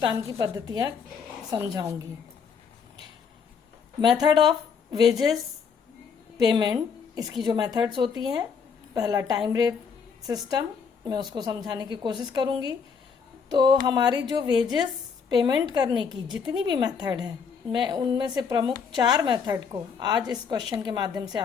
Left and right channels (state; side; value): quieter; right; 6.2 dB